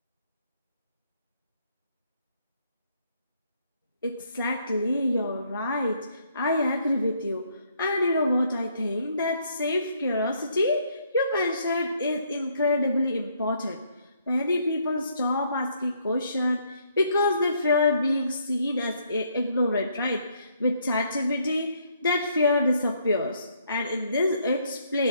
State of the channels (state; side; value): inverted; both; correlation -0.70